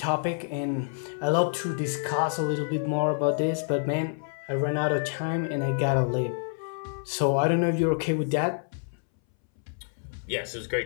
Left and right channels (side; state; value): right; silent; 60 dB below the other